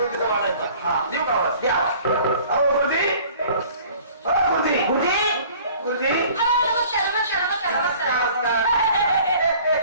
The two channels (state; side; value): inverted; both; correlation -0.50